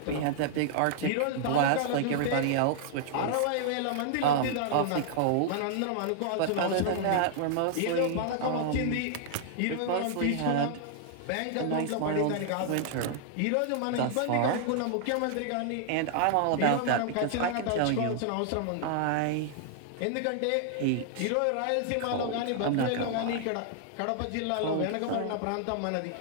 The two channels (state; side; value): different; both; correlation -0.01